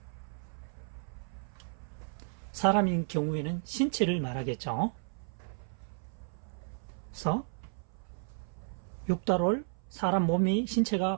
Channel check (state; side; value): silent; left; 55 dB below the other